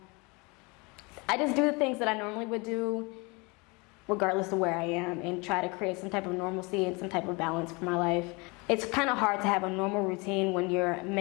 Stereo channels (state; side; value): quieter; right; 27.6 dB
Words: I just do the things that I normally would do regardless of where I am, and try to create some type of normalcy and some type of balance for my life. It's kind of hard to have a normal routine when you're